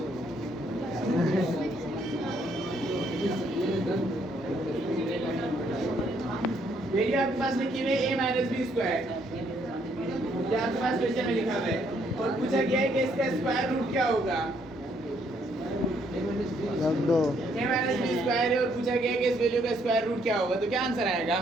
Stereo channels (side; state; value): both; normal; correlation 0.70